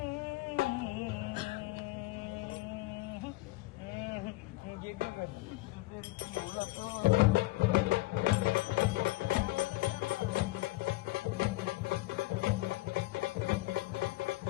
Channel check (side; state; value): right; quieter; 20.3 dB